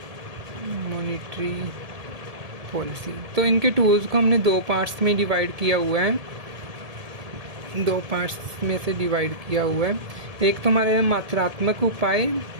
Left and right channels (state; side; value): late; left; 1.7 ms